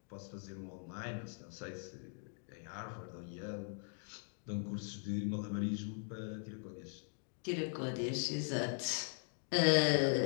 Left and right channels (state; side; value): silent; right; 51 dB below the other